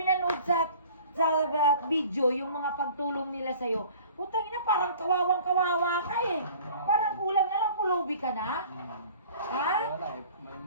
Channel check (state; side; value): inverted; both; correlation -0.48